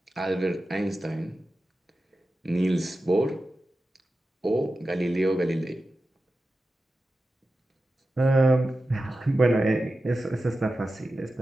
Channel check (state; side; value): normal; both; correlation 0.93